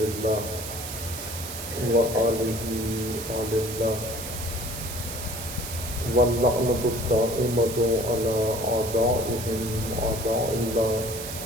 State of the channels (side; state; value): right; noise; hiss, 8 dB below the sound